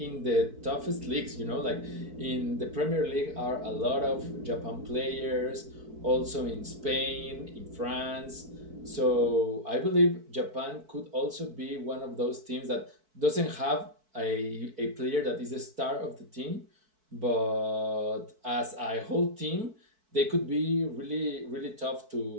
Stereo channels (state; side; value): late; left; 4.6 ms